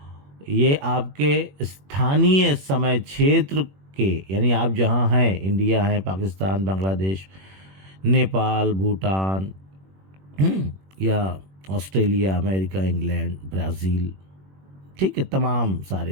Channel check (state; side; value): late; left; 21 ms